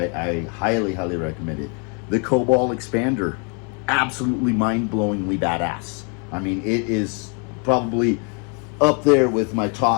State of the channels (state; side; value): quieter; right; 37.0 dB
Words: highly recommend it. The Cobalt expander, absolutely mind-blowingly badass. I mean, it is probably up there with my